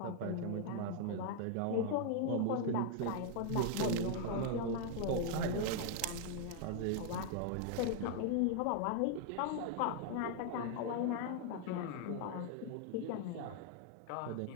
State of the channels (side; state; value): both; different; correlation 0.00